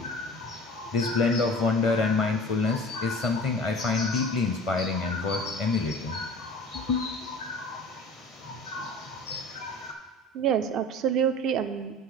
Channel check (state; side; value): normal; both; correlation 0.40